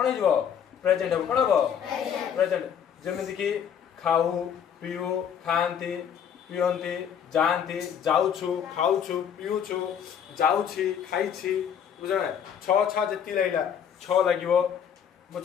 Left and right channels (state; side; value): quieter; right; 8.3 dB